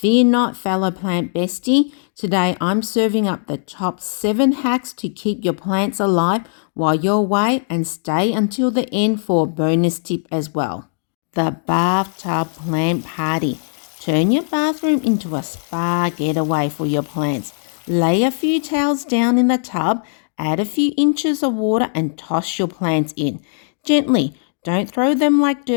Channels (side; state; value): right; silent; digital silence